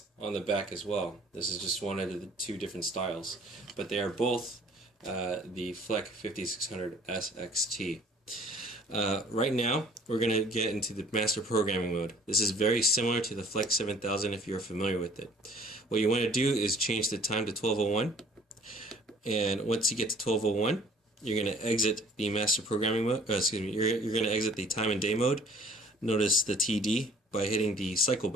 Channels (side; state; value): both; normal; correlation 0.53